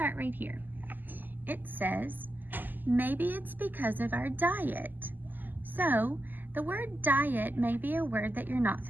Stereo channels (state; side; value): late; left; 0.087 ms